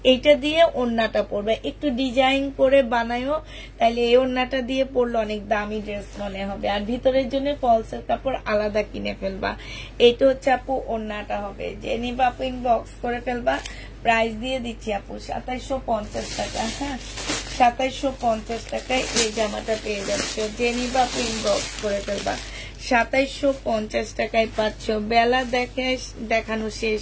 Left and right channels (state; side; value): identical; both; correlation 1.00